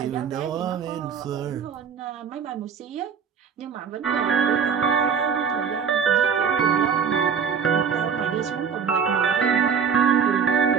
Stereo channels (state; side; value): quieter; left; 6.8 dB